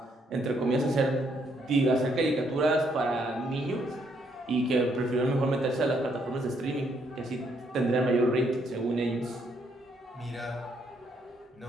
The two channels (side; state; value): both; normal; correlation 0.72